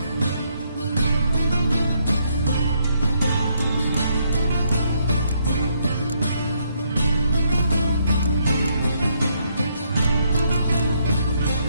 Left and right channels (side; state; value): both; inverted; correlation -0.73